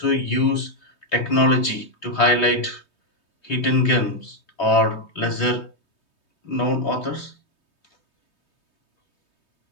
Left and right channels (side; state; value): right; late; 3.2 ms